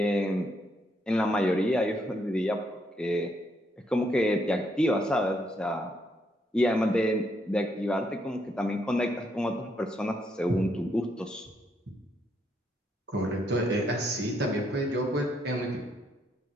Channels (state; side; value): normal; both; correlation 0.75